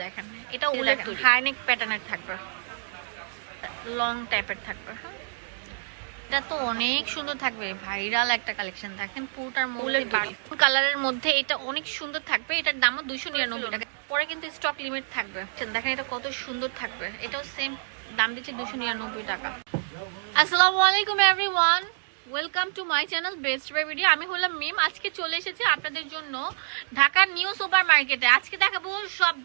দেখেন, এটা উলের হাইনেক প্যাটার্নের থাকবে, লং টাইপের থাকবে। হ্যাঁ, এটা তো অনেক সুন্দর থাকবে, ভাইরাল একটা কালেকশন। দেখেন পুরোটার মধ্যে কালারের মধ্যে এটা অনেক সুন্দর থাকবে। এটার দামও 299 টাকা। পরে কিন্তু স্টক লিমিট থাকবে। দেখেন এটা কত সুন্দর থাকবে, এটাও সেম দাম দিচ্ছে 299 টাকা। আসসালামু আলাইকুম everyone, welcome to my channel Best Buy Video. আমি হলাম মিম। আজকে চলে এসেছি আপনাদের জন্য ঢাকার নিউ সুপার মার্কেটে। আজকে দেখাবো সব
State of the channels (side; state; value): left; silent; digital silence